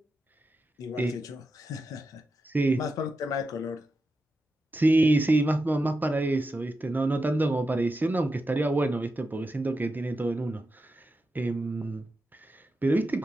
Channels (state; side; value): normal; both; correlation 0.89